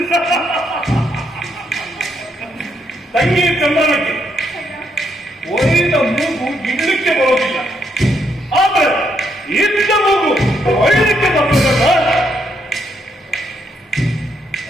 ತಂಗಿ ಚಂದ್ರನಕ್ಕೆ ಒಯ್ದ ಮೂಗು ಇಡ್ಲಿಕ್ಕೆ ಬರೋದಿಲ್ಲ, ಆದ್ರೆ ಇದ್ದ ಮೂಗು ಒಯ್ಲಿಕ್ಕೆ ಬರೋದಲ್ಲ.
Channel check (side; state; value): both; normal; correlation 0.76